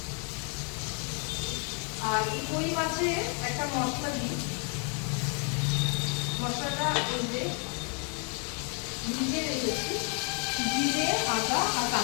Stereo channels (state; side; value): quieter; right; 37.9 dB